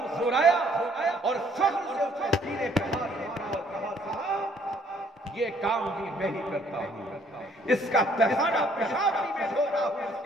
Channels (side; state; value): both; normal; correlation 0.63